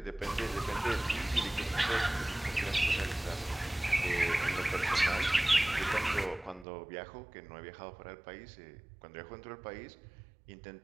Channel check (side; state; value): left; drops out; at 6.7 s